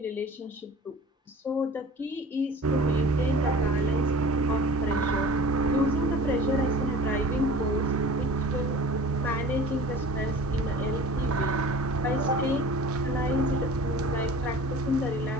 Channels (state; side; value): normal; both; correlation 0.42